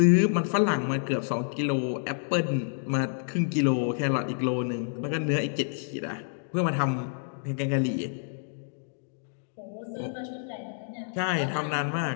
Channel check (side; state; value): right; silent; digital silence